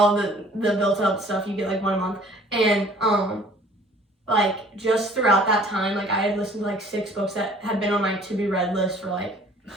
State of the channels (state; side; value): normal; both; correlation 0.53